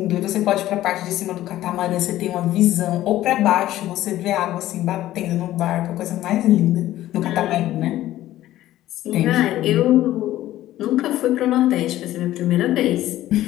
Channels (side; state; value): right; quieter; 14.3 dB